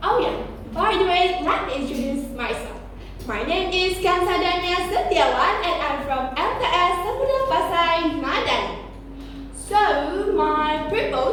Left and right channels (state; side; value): identical; both; correlation 1.00